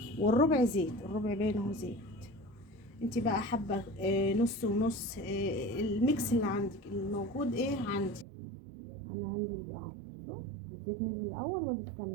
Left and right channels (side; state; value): left; drops out; at 8.2 s